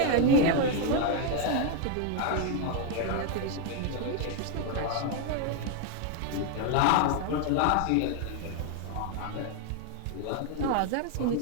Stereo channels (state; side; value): different; both; correlation 0.01